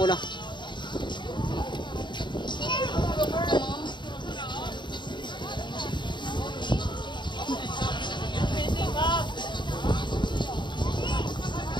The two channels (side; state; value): right; late; 0.22 ms